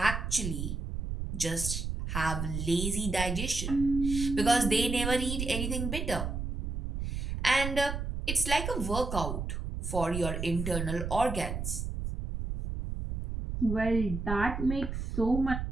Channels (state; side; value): noise; right; rumble, 4 dB below the sound